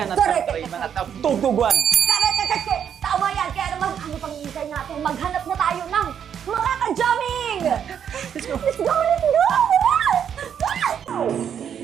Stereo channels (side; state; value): left; quieter; 8.4 dB